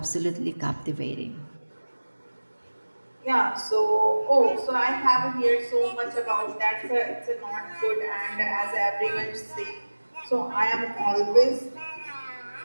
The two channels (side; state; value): both; inverted; correlation -1.00